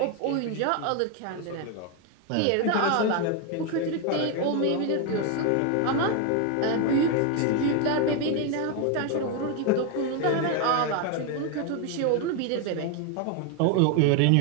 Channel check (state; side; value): different; both; correlation 0.01